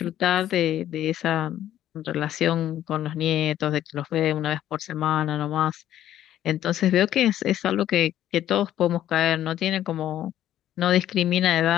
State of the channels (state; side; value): quieter; right; 12.0 dB